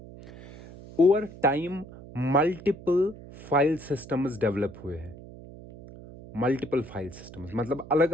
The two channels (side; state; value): right; noise; hum, 17 dB below the sound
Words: Over time multiple file systems develop हुए हैं. मल्टीपल फाइल सिस्टम्स मतलब अलग